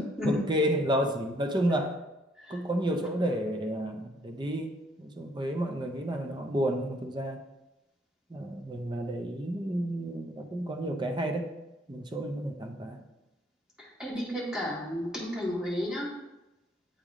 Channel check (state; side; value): normal; both; correlation 0.67